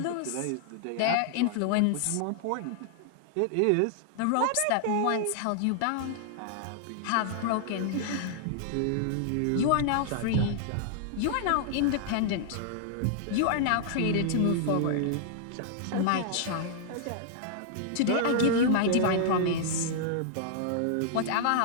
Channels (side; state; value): both; different; correlation -0.01